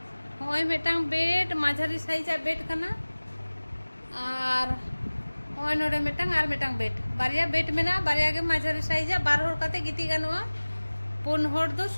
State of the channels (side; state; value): both; inverted; correlation -1.00